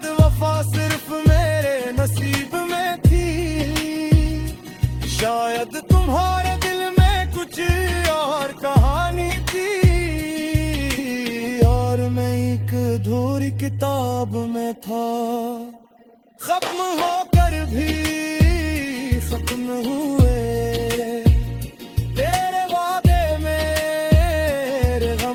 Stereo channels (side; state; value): both; identical; correlation 1.00